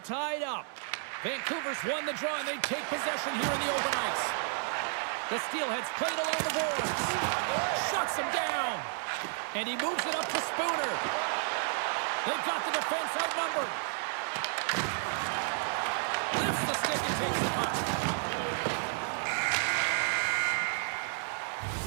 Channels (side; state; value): left; silent; 57 dB below the other